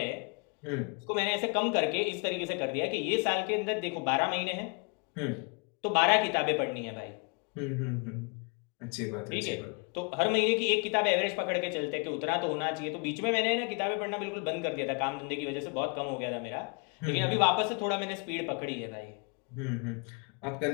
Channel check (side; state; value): right; quieter; 33.9 dB